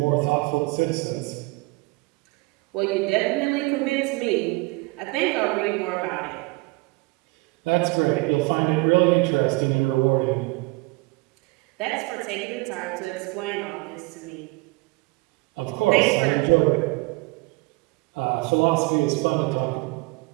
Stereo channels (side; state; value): left; quieter; 24.4 dB